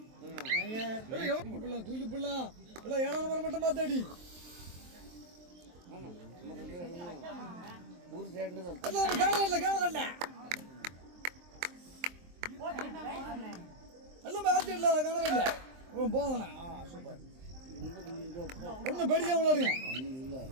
தூக்கி புள்ளா ஏழாம் நம்பர் மட்டும் பார்த்தாடி ஊர் சைடு எல்லாமே ஆர்டில காணவில்ல. போதண்ணா சூப்பர். ஒன்றும் பேடிக்காம விளையாடுங்க.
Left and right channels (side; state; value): left; late; 23 ms